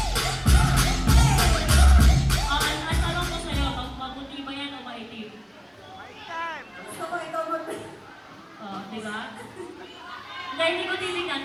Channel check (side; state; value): both; identical; correlation 1.00